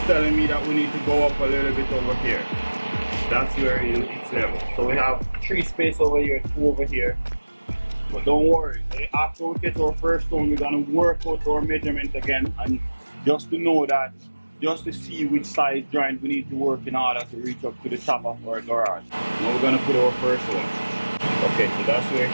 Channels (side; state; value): both; inverted; correlation -1.00